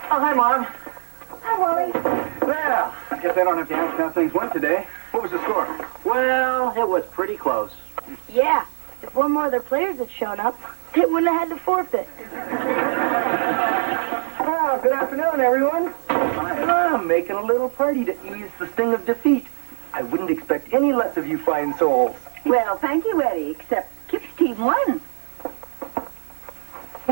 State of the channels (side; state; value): left; silent; 64 dB below the other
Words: Oh, hi, Mom. Hi, Wally. Well, I guess I don't have to ask how things went today. What was the score? Well, it was pretty close. Yeah, if one more of their players had shown up, they wouldn't have had to forfeit. Oh, good afternoon, everyone. I'm making a little party to ease the sting of defeat. I wouldn't expect any less of you fine souls. Well, thank you, Eddie, except Kip's team won.